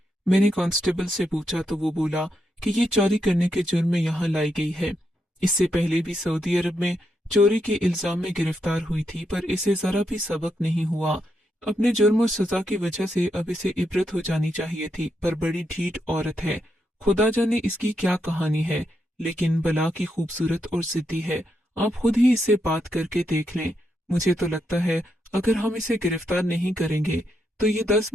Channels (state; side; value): normal; both; correlation 0.82